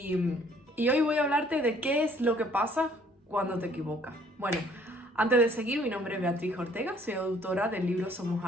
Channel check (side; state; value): both; normal; correlation 0.60